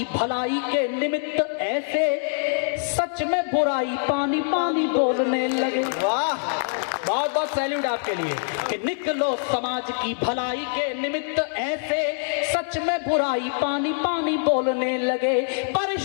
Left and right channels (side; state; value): right; silent; digital silence